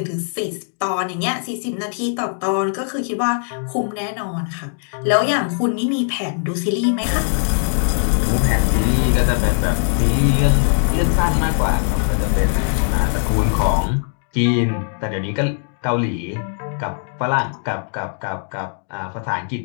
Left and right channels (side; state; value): right; silent; 64 dB below the other